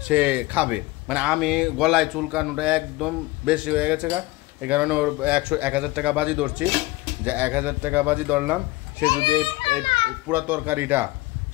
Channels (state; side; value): quieter; right; 20.0 dB